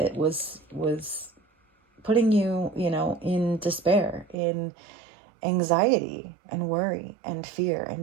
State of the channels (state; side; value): drops out; left; at 4.4 s